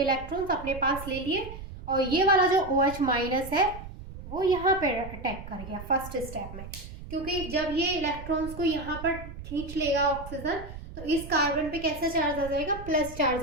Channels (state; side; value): noise; right; rumble, 12 dB below the sound